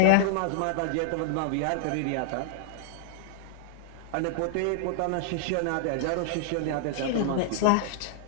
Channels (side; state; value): both; different; correlation -0.01